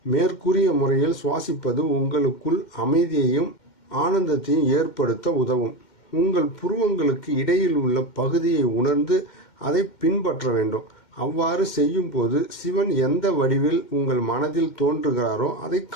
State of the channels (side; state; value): right; late; 2.1 ms